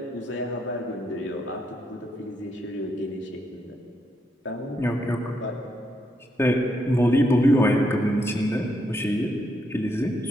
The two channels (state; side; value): normal; both; correlation 0.78